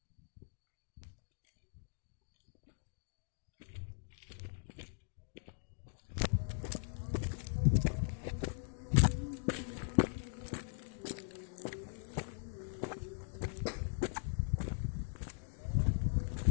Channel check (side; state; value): right; silent; digital silence